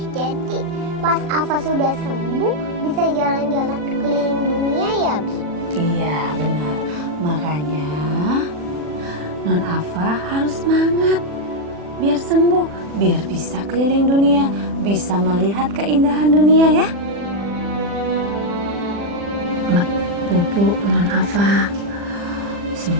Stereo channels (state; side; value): late; left; 40 ms